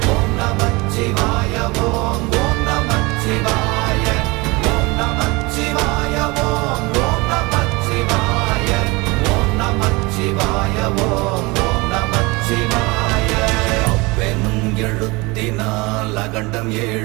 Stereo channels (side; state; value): left; quieter; 24.8 dB